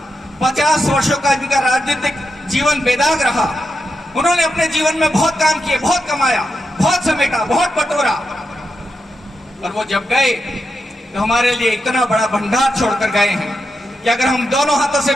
50 वर्षों का इनका राजनीतिक जीवन बेदाग रहा। उन्होंने अपने जीवन में बहुत काम किए, बहुत कमाया, बहुत समेटा, बहुत बटोरा, और वो जब गए तो हमारे लिए इतना बड़ा भंडार छोड़कर गए हैं कि अगर हम दोनों हाथों से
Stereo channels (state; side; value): normal; both; correlation 0.87